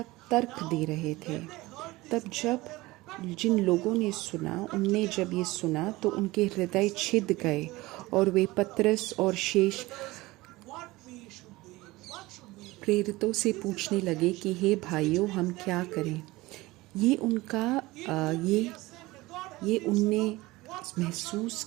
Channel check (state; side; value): quieter; left; 20.1 dB